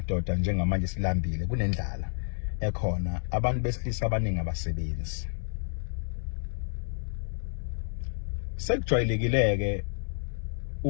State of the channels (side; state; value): right; silent; digital silence